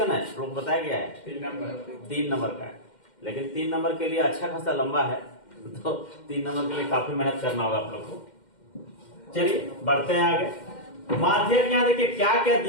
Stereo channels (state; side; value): late; right; 2.1 ms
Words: है लोग बताया गया है? 3 नंबर का है, लेकिन 3 नंबर के लिए अच्छा खासा लंबा है तो 3 नंबर के लिए काफी मेहनत करना होगा आप लोग को। चलिए बढ़ते हैं आगे। माध्यक यहाँ देखिए क्या क्या